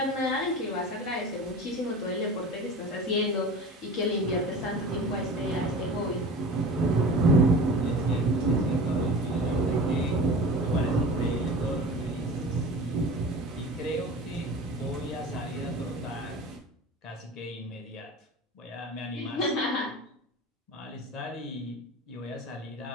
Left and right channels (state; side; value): normal; both; correlation 0.36